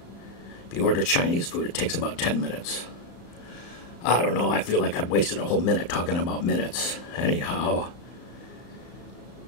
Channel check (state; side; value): late; right; 34 ms